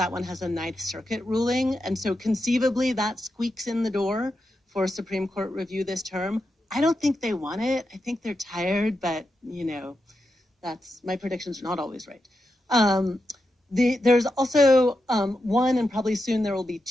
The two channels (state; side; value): normal; both; correlation 0.87